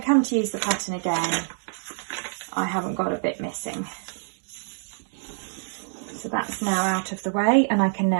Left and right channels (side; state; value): left; silent; digital silence